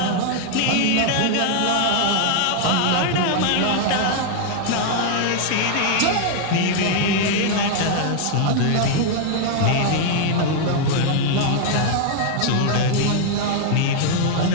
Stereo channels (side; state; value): both; different; correlation 0.00